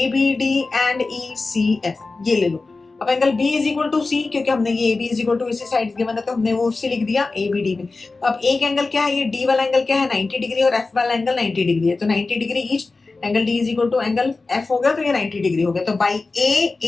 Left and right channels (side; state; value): right; quieter; 3.7 dB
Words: एंड ECF ये ले लो। अब angle B is equal to C, क्योंकि हमने ये AB is equal to AC sides given है, तो हमने वो उससे लिख दिया ABD में। अब एक एंगल क्या है, ये D वाला एंगल क्या है 90 डिग्री, और F वाला एंगल 90 डिग्री है, तो 90 degree each, angle D is equal to angle F हो गया, तो ये 90 डिग्री हो गया। तो by